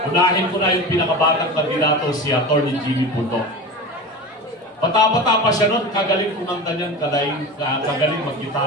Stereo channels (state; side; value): normal; both; correlation 0.30